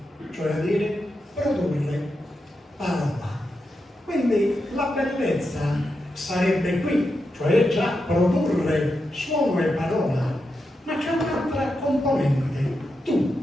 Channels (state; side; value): normal; both; correlation 0.86